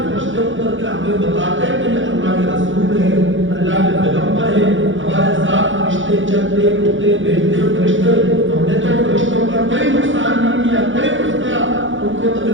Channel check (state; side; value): late; left; 0.56 ms